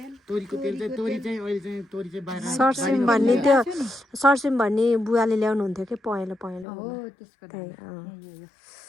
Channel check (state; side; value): drops out; right; at 6.7 s